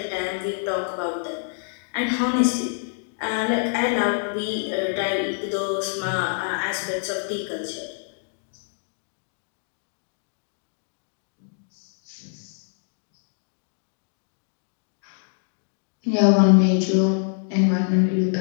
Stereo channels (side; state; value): right; silent; digital silence